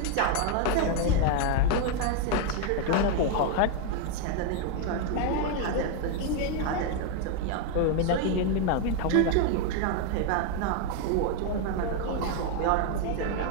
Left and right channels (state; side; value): different; both; correlation 0.01